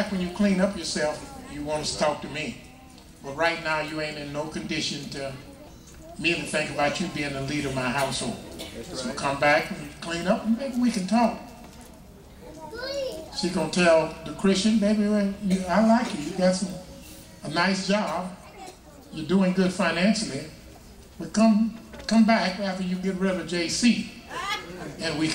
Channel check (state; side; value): identical; both; correlation 1.00